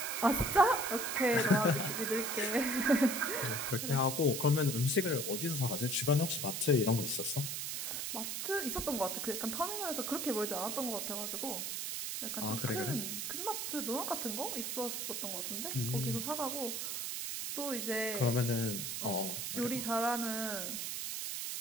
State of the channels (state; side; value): noise; right; hiss, 3 dB below the sound